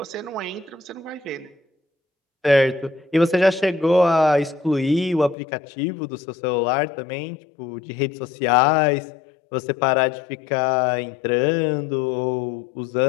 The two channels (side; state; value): right; drops out; at 5.4 s